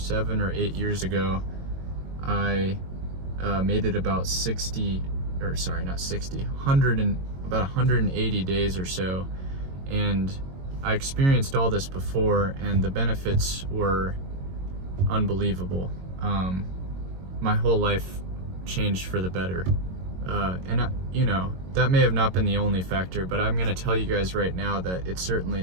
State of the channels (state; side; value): late; left; 22 ms